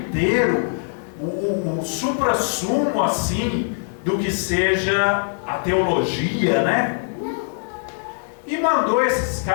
o suprassumo assim do que seja a teologia, né? E mandou esses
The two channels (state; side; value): silent; right; digital silence